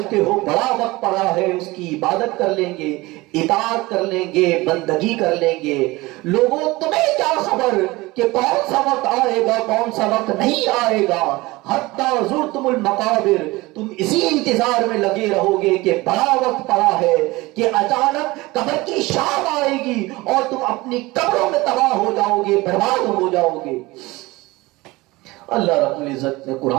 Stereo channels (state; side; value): quieter; left; 21.1 dB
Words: ہو بڑا وقت پڑا ہے, اس کی عبادت کر لیں گے, اطاعت کر لیں گے, بندگی کر لیں گے. لوگوں تمہیں کیا خبر کہ کون سا وقت آئے گا, کون سا وقت نہیں آئے گا. حتی زرتم المقابر, تم اسی انتظار میں لگے رہو گے کہ بڑا وقت پڑا ہے کہ اچانک قبر کی شام آئے گی اور تم اپنی قبروں میں تباہ ہو جاؤ گے, برباد ہو جاؤ گے. اللہ رب العزت نے